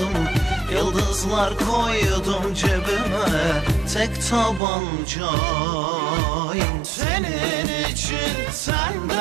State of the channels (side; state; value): left; drops out; at 4.6 s